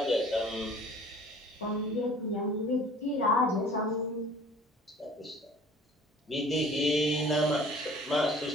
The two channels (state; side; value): normal; both; correlation 0.49